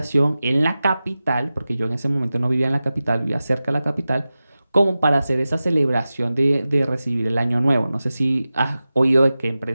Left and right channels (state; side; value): inverted; both; correlation -0.95